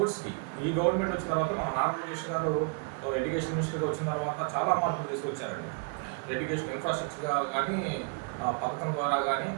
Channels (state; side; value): quieter; left; 34.5 dB